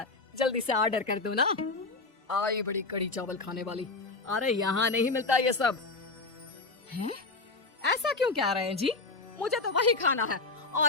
जल्दी से ऑर्डर कर दो ना। आई बड़ी कड़ी चावल खाने वाली। अरे यहाँ नहीं मिलता ये सब। हैं? ऐसा क्यों कह रहे हैं जी? मुझे तो वही खाना है,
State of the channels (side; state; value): right; quieter; 3.6 dB